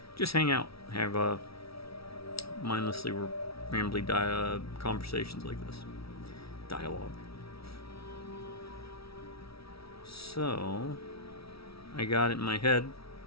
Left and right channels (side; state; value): right; late; 0.76 ms